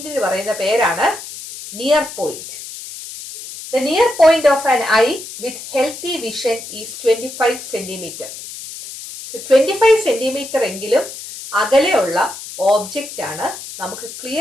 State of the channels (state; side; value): noise; left; hiss, 12 dB below the sound